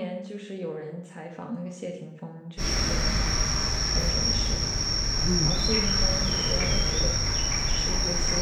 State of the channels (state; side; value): identical; both; correlation 1.00